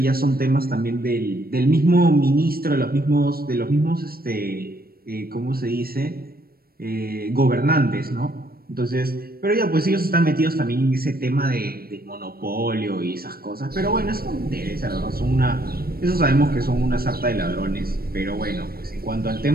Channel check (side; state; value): left; late; 0.44 ms